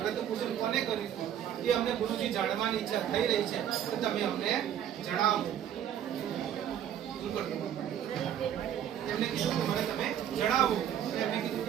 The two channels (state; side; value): quieter; left; 10.0 dB